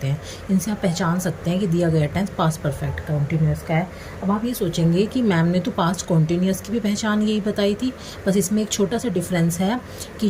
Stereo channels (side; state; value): both; identical; correlation 1.00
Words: हैं। इनसे आप पहचान सकते हैं कि दिया गया टेंस पास्ट परफेक्ट कॉन्टिन्यूस का है। अब आप ये सोचेंगे कि मैम ने तो पास्ट कॉन्टिन्यूस की भी पहचान यही बताई थी, बस इसमें एक छोटा सा डिफरेंस है कि